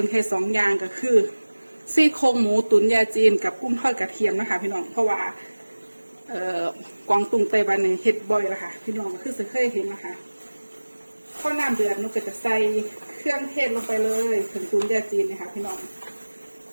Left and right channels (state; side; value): inverted; both; correlation -1.00